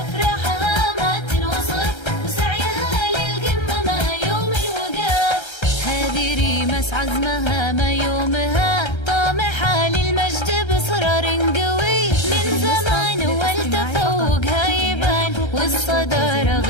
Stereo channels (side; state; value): right; late; 1.3 ms